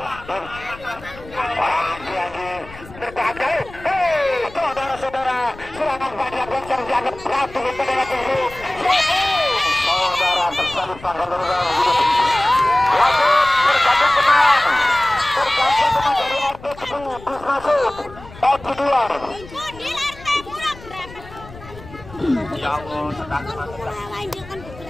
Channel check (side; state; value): left; noise; rumble, 18 dB below the sound